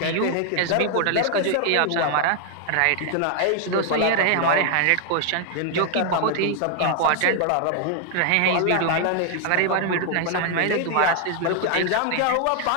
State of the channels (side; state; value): both; different; correlation 0.00